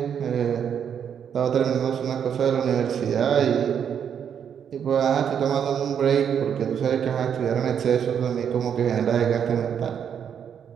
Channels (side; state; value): left; quieter; 8.2 dB